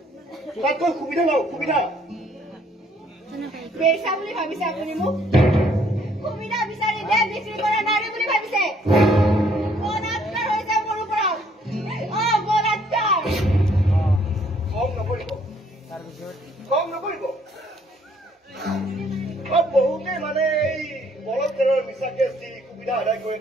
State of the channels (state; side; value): normal; both; correlation 0.64